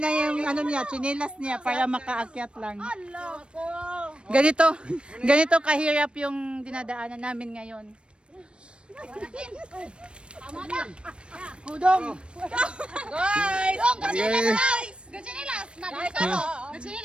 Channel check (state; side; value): late; left; 0.057 ms